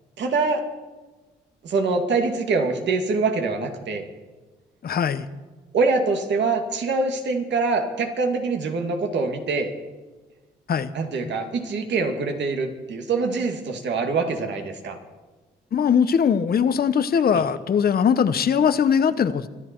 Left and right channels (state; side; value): normal; both; correlation 0.43